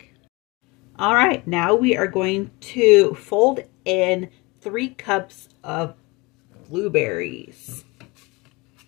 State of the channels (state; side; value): quieter; right; 24.9 dB